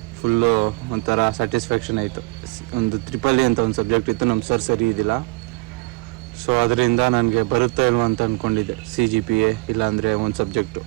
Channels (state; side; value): quieter; left; 23.8 dB